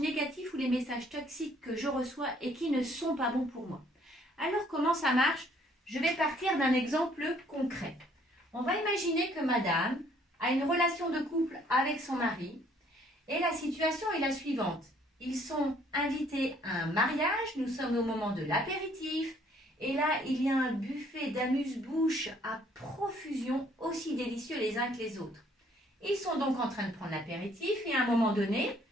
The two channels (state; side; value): normal; both; correlation 0.63